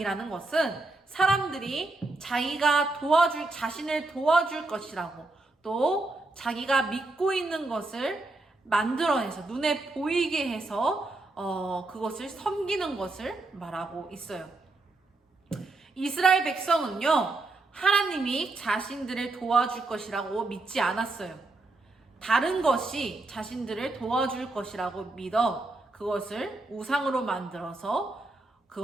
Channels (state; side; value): quieter; left; 3.1 dB